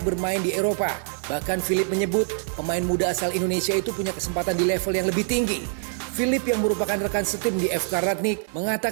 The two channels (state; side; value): silent; left; 59 dB below the other